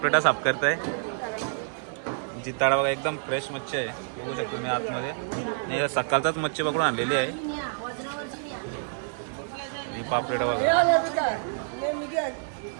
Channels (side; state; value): left; silent; digital silence